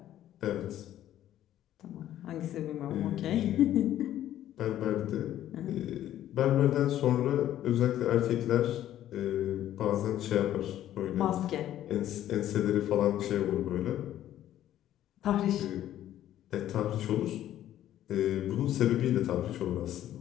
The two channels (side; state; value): right; quieter; 12.3 dB